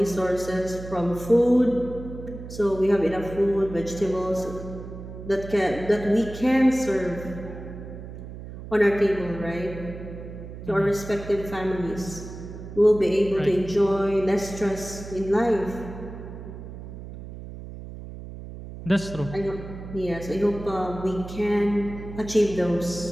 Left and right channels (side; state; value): right; noise; hum, 12 dB below the sound